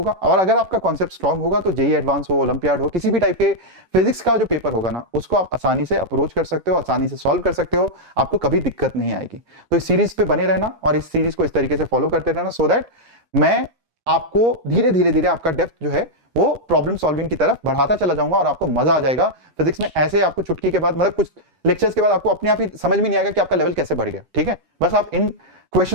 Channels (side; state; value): left; late; 11 ms